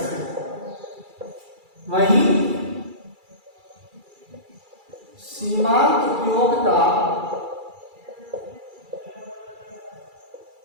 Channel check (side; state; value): left; late; 2.3 ms